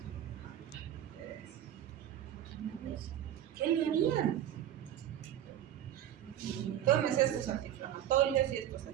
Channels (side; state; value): left; quieter; 11.3 dB